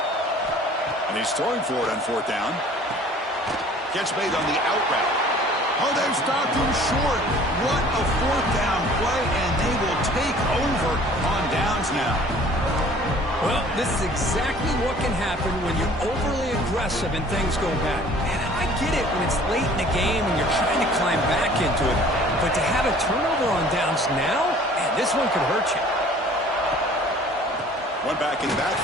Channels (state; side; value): normal; both; correlation 0.51